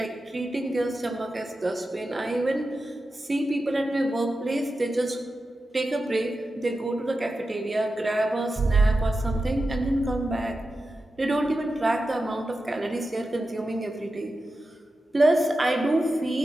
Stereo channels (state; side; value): normal; both; correlation 0.92